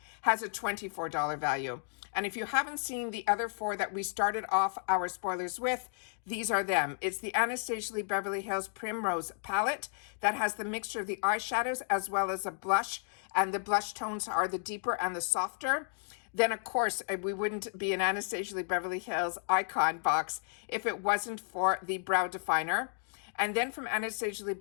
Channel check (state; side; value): silent; right; digital silence